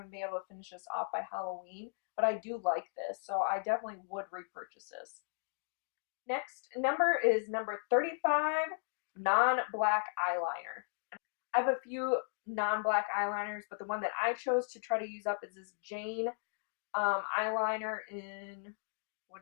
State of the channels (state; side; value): silent; right; digital silence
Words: to be able to finish this off by Halloween, but I do like this, so I definitely would repurchase this. Next number is number 35, non-black eyeliner. I have a few non-black eyeliners, but the one that I chose to try to use up is this Jane eyeliner in, what